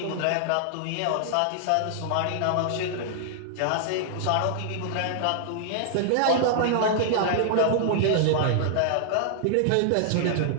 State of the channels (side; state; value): both; different; correlation -0.01